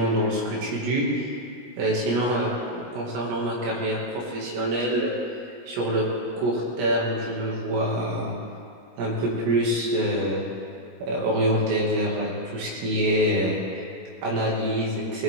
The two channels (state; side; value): late; left; 17 ms